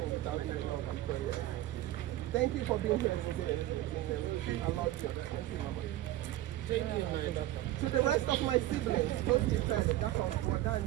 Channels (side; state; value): left; quieter; 14.8 dB